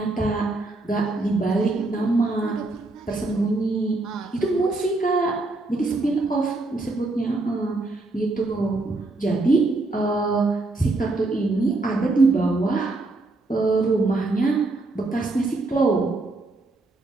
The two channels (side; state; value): left; quieter; 3.1 dB